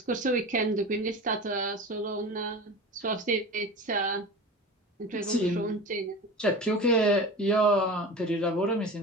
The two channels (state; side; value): normal; both; correlation 0.32